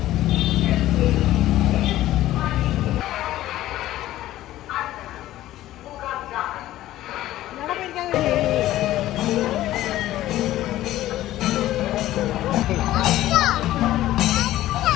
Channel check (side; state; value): right; quieter; 14.6 dB